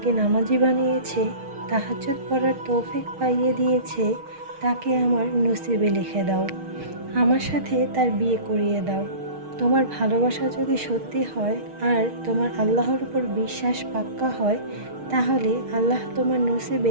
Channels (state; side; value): late; left; 6.4 ms